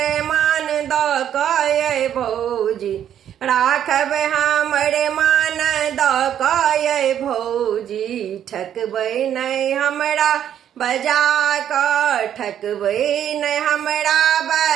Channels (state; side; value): quieter; left; 10.0 dB